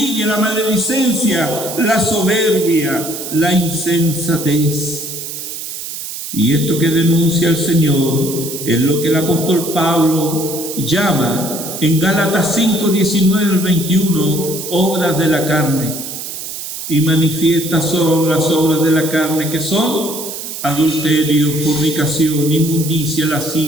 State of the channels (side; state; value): right; noise; hiss, 8 dB below the sound